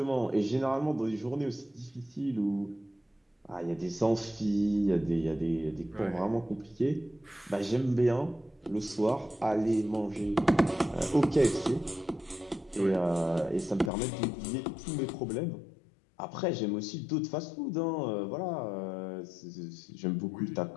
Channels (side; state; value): right; drops out; at 13.9 s